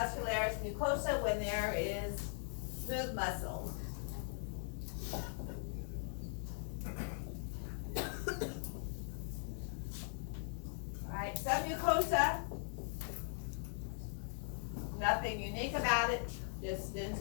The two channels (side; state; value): right; silent; digital silence